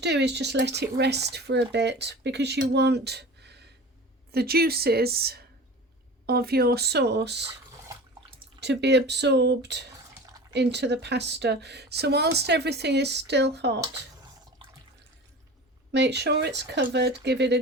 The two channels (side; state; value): both; normal; correlation 0.36